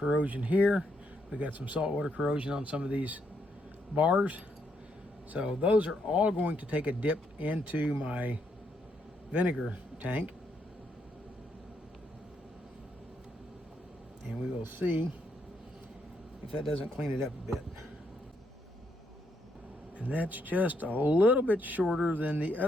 here. We got some saltwater corrosion on some of these bars. So those are all going to take a dip into my vinegar tank. And we will see if that doesn't clean it up a bit. And that's just a little bit shorter than the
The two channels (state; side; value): normal; both; correlation 0.76